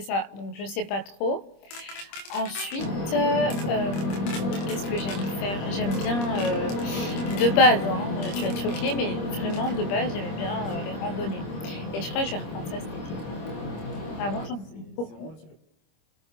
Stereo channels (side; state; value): right; late; 25 ms